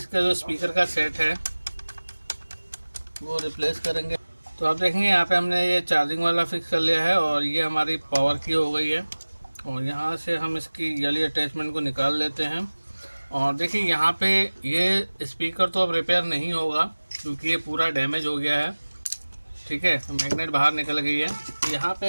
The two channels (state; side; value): inverted; both; correlation -1.00